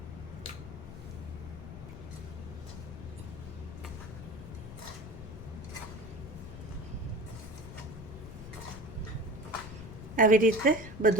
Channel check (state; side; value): noise; left; rumble, 11 dB below the sound